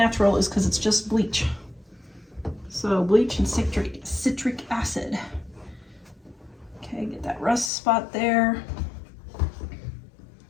is because it's just bleach. So bleach and citric acid. Okay, get that rust spot there.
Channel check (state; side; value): drops out; right; at 7.7 s